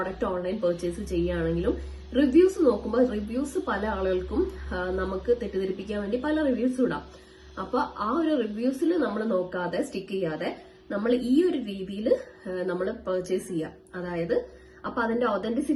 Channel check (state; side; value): identical; both; correlation 1.00